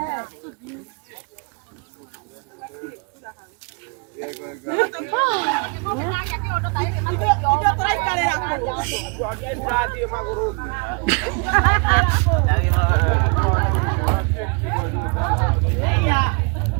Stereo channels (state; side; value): quieter; left; 33.9 dB